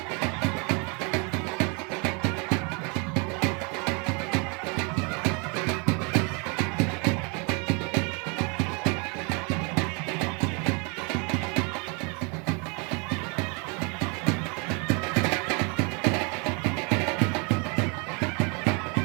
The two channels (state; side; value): quieter; left; 32.8 dB